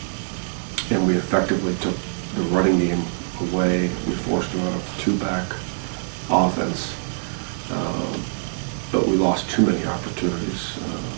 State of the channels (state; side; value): silent; left; 63 dB below the other